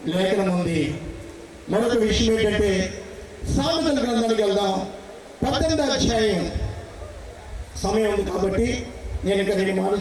ఉంది. మరొక విషయం ఏంటంటే, సామెతల గ్రంథానికి వెళ్దాం. 18వ అధ్యాయం. సమయం ఉంది కాబట్టి నేను ఇంకా 2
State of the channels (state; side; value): identical; both; correlation 1.00